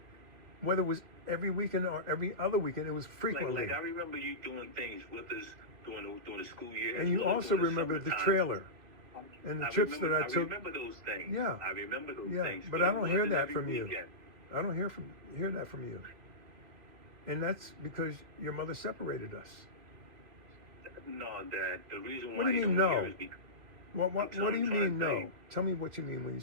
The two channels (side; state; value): left; late; 2.5 ms